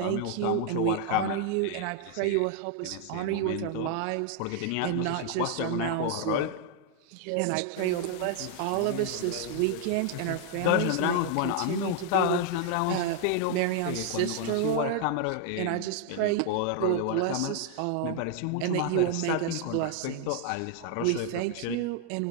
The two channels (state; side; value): different; both; correlation 0.00